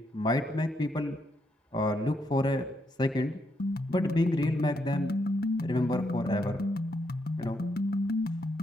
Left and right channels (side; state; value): both; normal; correlation 0.78